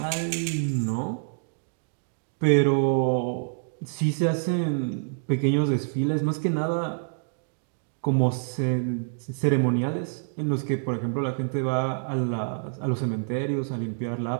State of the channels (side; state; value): left; silent; digital silence